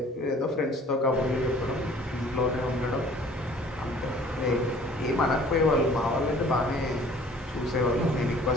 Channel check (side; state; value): both; normal; correlation 0.52